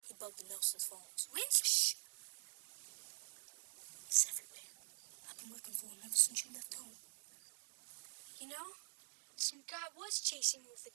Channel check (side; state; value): left; silent; digital silence